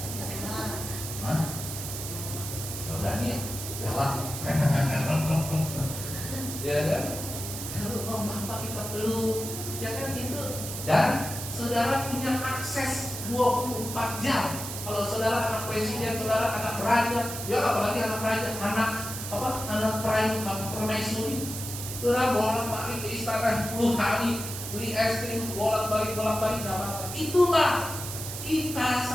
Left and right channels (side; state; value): right; noise; hiss, 7 dB below the sound